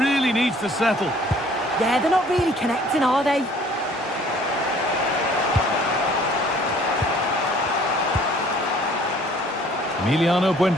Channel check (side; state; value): both; normal; correlation 0.55